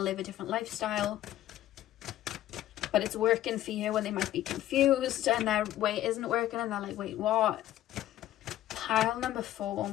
live a different lifestyle. But it's working for you when they might be confused and their way isn't working and they're like, wait, what? Pile number 4.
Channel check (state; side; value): quieter; right; 13.4 dB